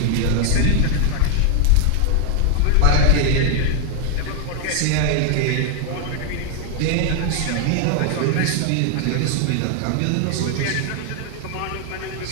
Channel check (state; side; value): different; both; correlation 0.00